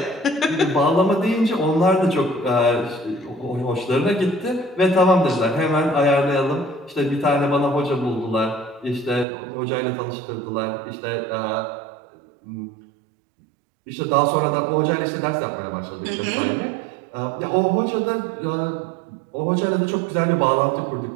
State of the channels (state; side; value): drops out; left; at 9.2 s